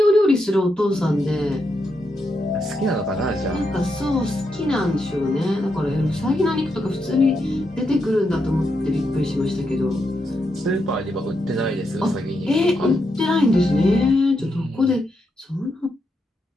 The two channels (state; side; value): normal; both; correlation 0.83